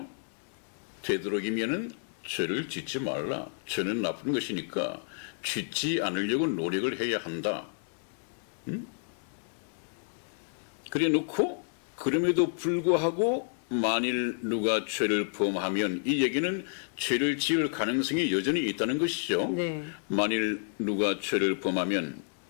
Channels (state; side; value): silent; right; digital silence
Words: 되도록이면은 죄를 짓지 말라. 죄는 나쁜 것이니까 짓지 않으려고 노력을 해야 한다. 그래 놓고 그럼에도 불구하고 만일 누가 죄를 범하면 이 얘기는 죄를 지을 가능성이 여전히 있다는 것이죠. 네. 만일 누가 죄를 범하면